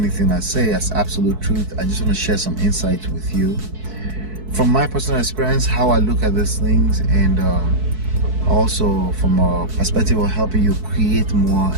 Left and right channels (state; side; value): late; left; 4.6 ms